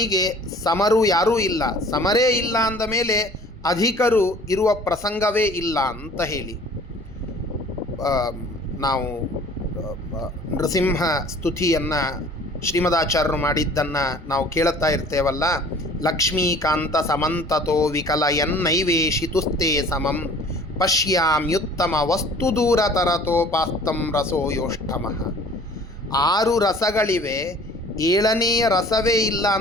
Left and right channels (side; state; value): both; normal; correlation 0.50